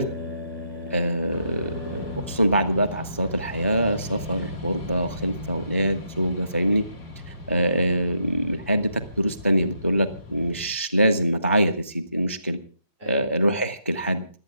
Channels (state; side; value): inverted; both; correlation -0.78